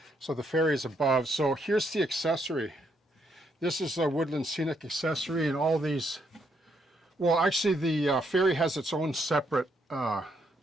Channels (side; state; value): both; normal; correlation 0.75